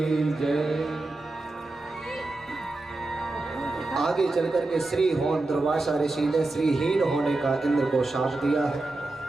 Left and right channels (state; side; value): quieter; left; 3.0 dB